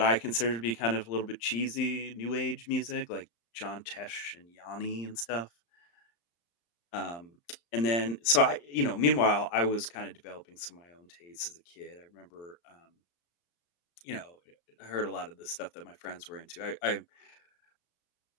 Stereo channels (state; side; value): late; right; 35 ms